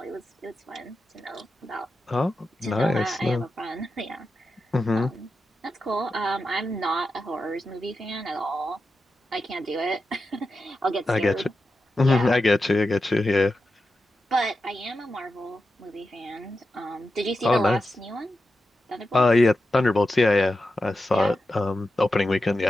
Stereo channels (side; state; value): both; normal; correlation 0.90